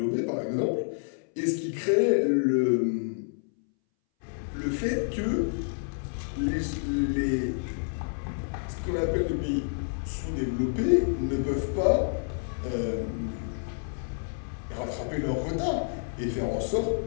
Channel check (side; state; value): right; silent; 59 dB below the other